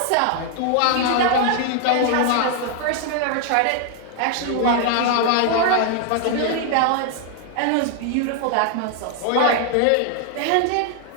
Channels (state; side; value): different; both; correlation 0.00